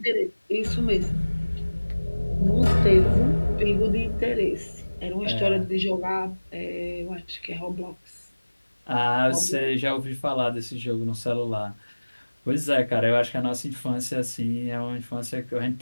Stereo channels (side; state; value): both; inverted; correlation -1.00